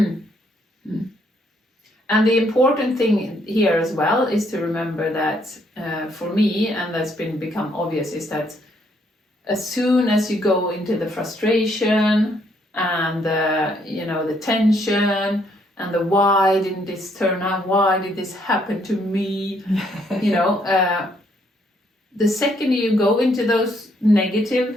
And the important thing here as well is to remember that for me, and that's become obvious, is that as soon as you go into the frustration and the tension and the why didn't this turn out, why did this happen to me, the second you go into those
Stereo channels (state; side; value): normal; both; correlation 0.70